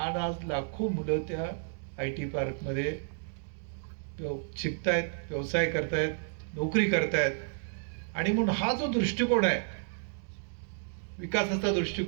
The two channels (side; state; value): left; silent; digital silence